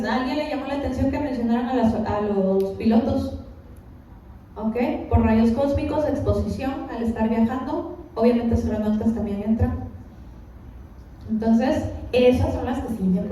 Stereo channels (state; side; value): identical; both; correlation 1.00